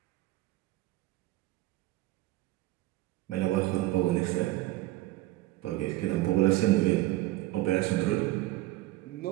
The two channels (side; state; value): left; quieter; 17.6 dB